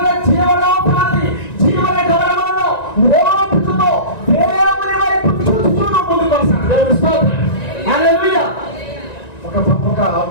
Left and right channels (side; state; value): right; late; 1.9 ms